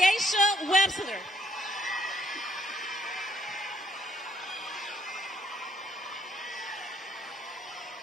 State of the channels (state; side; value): normal; both; correlation 0.68